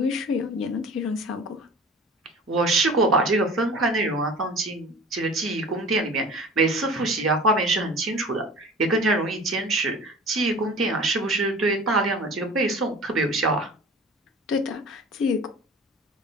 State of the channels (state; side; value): normal; both; correlation 0.41